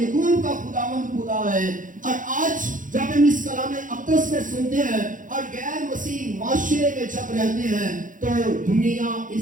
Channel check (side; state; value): left; late; 0.38 ms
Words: کا خداوند خدا ہے. اور آج جب ہم اس کلام اقدس میں سنتے ہیں اور غیر مسیح معاشرے میں جب رہتے ہیں تو دنیا